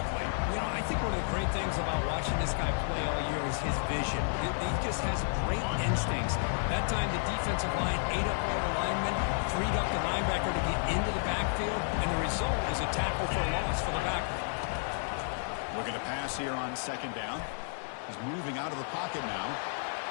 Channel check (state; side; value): silent; right; 57 dB below the other